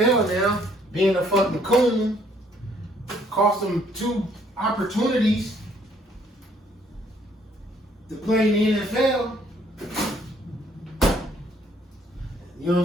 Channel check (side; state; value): both; normal; correlation 0.65